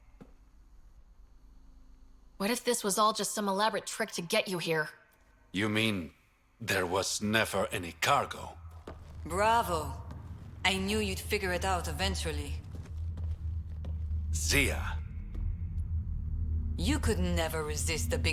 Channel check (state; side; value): identical; both; correlation 1.00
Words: What if this was all just some elaborate trick to get you here? You mean there was never any cargo? Bravo. I knew you'd figure it out eventually. Zia You could never resist a